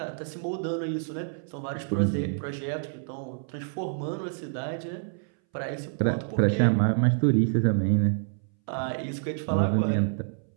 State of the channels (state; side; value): silent; left; 59 dB below the other